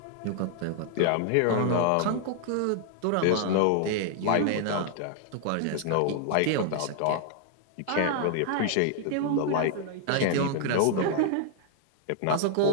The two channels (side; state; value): both; different; correlation 0.00